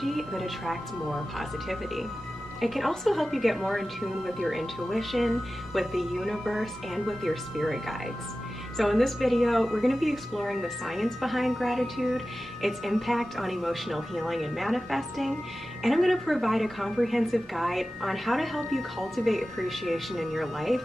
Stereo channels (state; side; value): normal; both; correlation 0.95